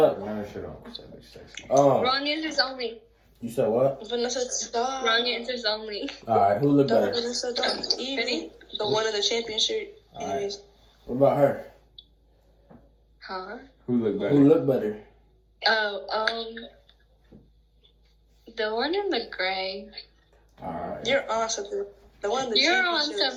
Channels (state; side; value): identical; both; correlation 1.00